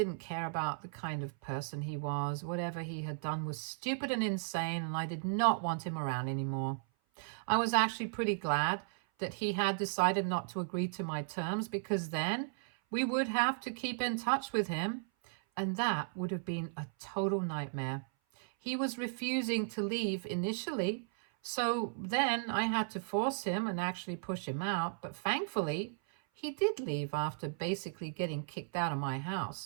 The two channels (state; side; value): silent; left; 54 dB below the other